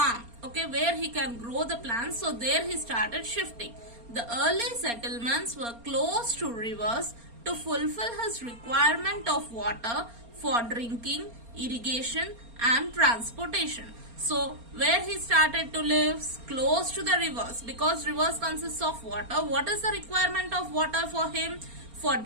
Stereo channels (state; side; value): late; left; 4.3 ms